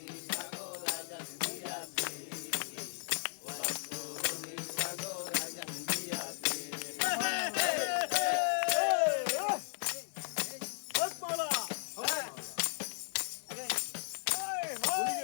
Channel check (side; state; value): right; silent; digital silence